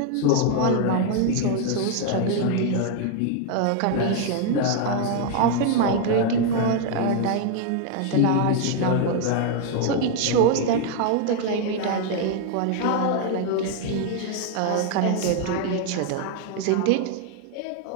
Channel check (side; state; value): both; different; correlation 0.01